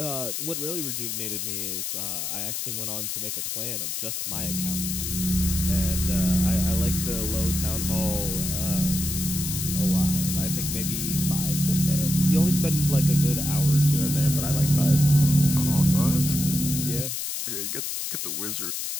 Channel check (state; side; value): noise; left; hiss, 3 dB below the sound